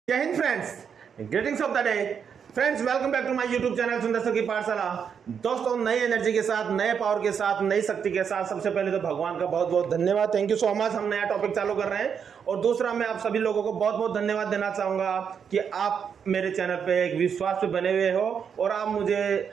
जय हिंद friends, greetings of the day friends. Welcome back to my YouTube channel Sundar sir की पाठशाला। दोस्तों, नई एनर्जी के साथ, नए पावर के साथ, नई शक्ति के साथ सबसे पहले तो भगवान का बहुत बहुत धन्यवाद, थैंक यू सो मच। हम नया टॉपिक चालू कर रहे हैं और दूसरा मैं आप सभी लोगों को बहुत बहुत धन्यवाद देना चाहूंगा कि आप मेरे चैनल पे एक विश्वास पे बने हुए हो और आप मुझे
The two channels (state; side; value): quieter; left; 7.2 dB